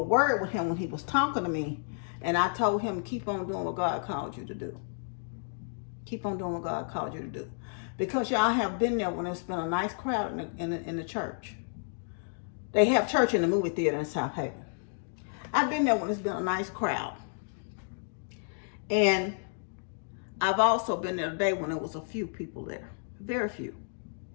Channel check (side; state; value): right; silent; digital silence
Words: word with him when he was talking to me. And I told him, keep on doing what God called you to do. Keep on doing what God called you to do. Because y'all have been there when it's been a nice crowd in the church. They have church in the movie theater in South Haven. I've been there when it's been a nice crowd. And I've also been there today when there was a few people there. Very few.